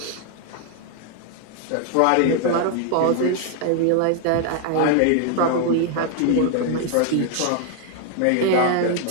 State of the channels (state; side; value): different; both; correlation 0.00